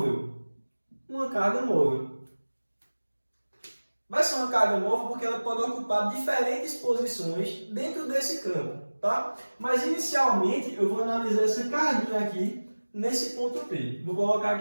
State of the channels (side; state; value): both; inverted; correlation -1.00